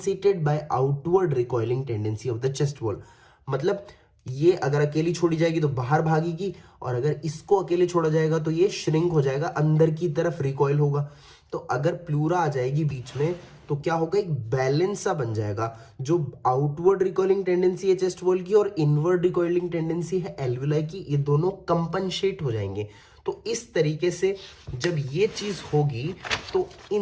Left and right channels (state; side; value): identical; both; correlation 1.00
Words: by outward recoiling tendency of the chest wall. मतलब ये अगर अकेली छोड़ी जाएगी तो बाहर भागेगी और अगर इसको अकेले छोड़ा जाएगा तो ये श्रिंक हो जाएगा, अंदर की तरफ रिकॉइल होगा। तो अगर प्लूरा आ जाएगी बीच में तो क्या होगा, एक बैलेंस सा बन जाएगा। जो आउटवर्ड रिकॉइलिंग टेंडेंसी है चेस्ट वॉल की और इनवर्ड रिकॉइलिंग टेंडेंसी है एल्वेओलाई की, ये दोनों कंपनसेट हो जाएंगे। तो इस तरीके से जब ये चीज होगी तो